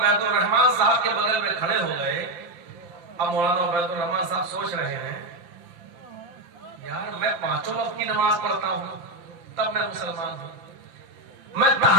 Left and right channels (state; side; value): late; left; 5.7 ms